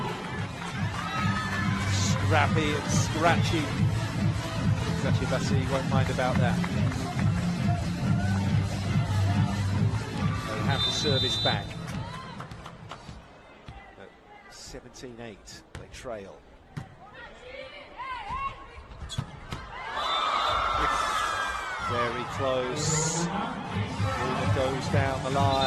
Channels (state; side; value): identical; both; correlation 1.00